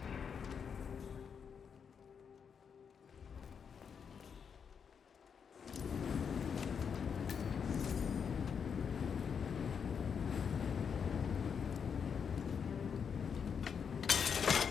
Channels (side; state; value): right; quieter; 6.8 dB